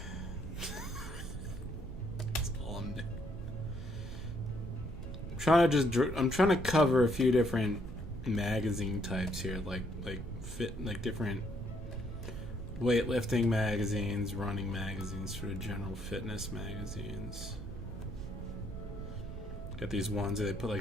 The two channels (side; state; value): right; noise; rumble, 9 dB below the sound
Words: That's all I'm doing. I'm trying to cover a few different magazine types here, like different weightlifting magazines, running magazines, sort of general fitness magazines. Got these ones that they put